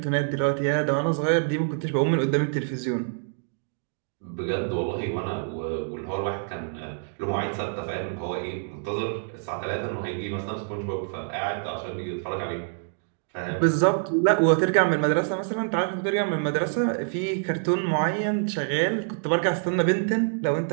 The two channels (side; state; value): left; silent; digital silence